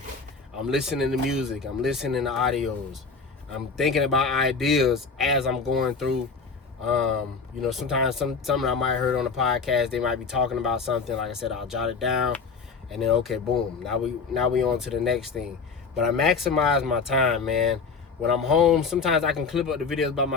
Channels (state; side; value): quieter; right; 4.9 dB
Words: I'm listening to music, I'm listening to audios. I'm thinking about ideas as I'm going through. Sometimes something I might have heard on the podcast, they might be talking about something. Like I said, I'll jot it down and then okay, boom. Now we on to the next thing. But I maximize my time, man. When I'm home, sometimes I can clip up the videos by